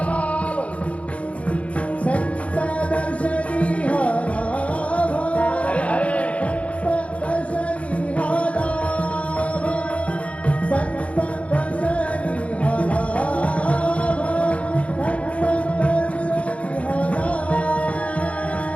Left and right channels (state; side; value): late; right; 0.064 ms